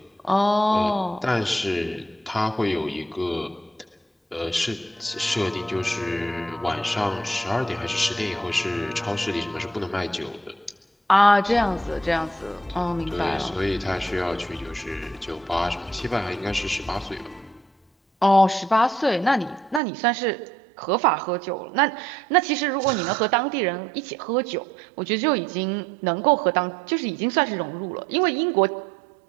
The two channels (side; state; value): left; drops out; at 19.8 s